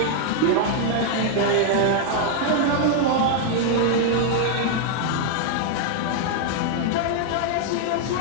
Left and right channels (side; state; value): both; different; correlation 0.00